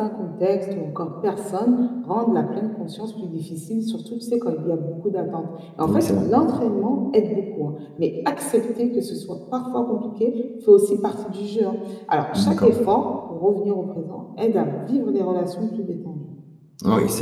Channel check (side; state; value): both; identical; correlation 1.00